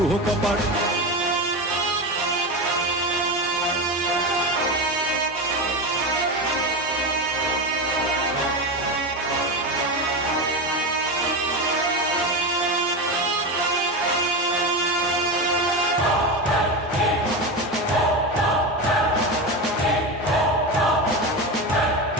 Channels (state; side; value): normal; both; correlation 0.19